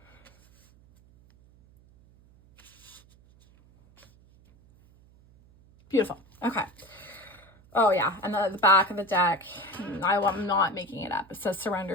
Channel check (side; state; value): right; noise; hum, 28 dB below the sound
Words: Beautiful. Okay. Oh yeah, and the back of the deck, I'm not making it up. It says surrender